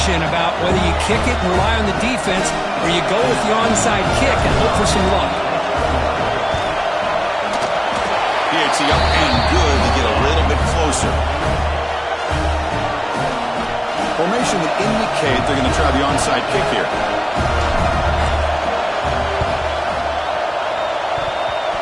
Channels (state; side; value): identical; both; correlation 1.00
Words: about whether you kick it and rely on the defense or you go with the onside kick and hope for some luck. PAT up and good to get a little bit closer. Formation would indicate they're going to try the onside kick here.